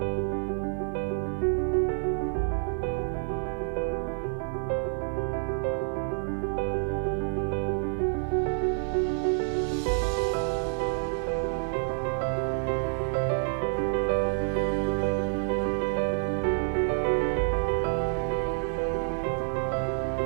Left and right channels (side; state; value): left; silent; digital silence